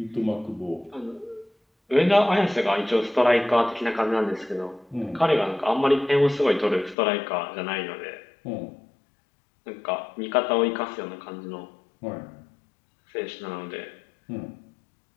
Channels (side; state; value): right; drops out; at 7.0 s